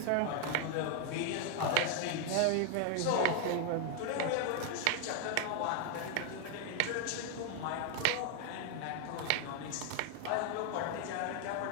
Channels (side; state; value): both; different; correlation 0.00